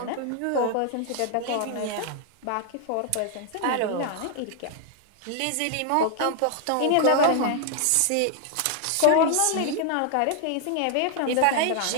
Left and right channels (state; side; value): different; both; correlation 0.00